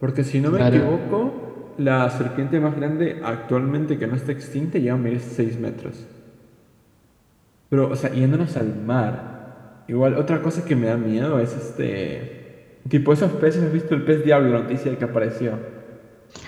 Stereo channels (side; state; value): both; identical; correlation 1.00